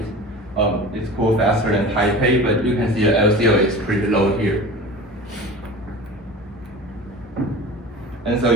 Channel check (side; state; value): both; normal; correlation 0.36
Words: cool faster than Taipei, but you can see the LCO is pretty low here. And so